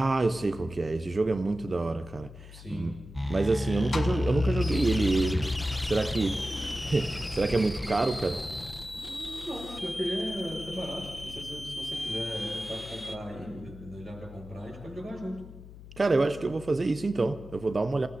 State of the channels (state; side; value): noise; left; hum, 16 dB below the sound